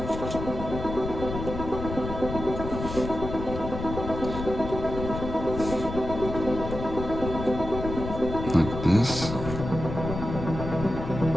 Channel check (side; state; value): left; noise; rumble, 7 dB below the sound